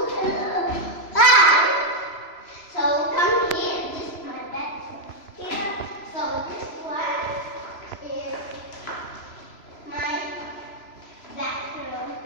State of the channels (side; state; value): right; late; 3.0 ms